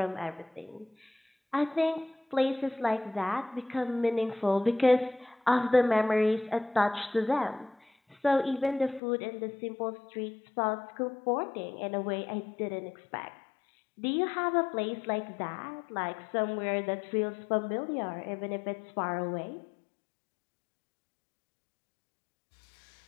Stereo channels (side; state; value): right; drops out; at 9.0 s